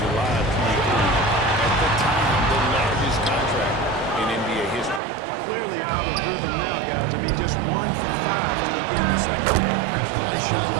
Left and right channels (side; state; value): left; drops out; at 5.0 s